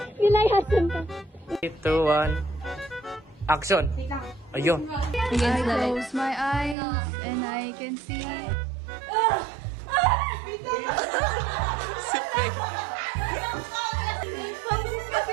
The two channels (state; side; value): drops out; left; at 6.8 s